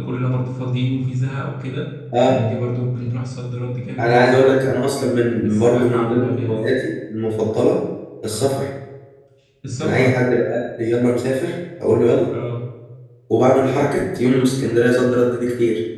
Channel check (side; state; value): both; identical; correlation 1.00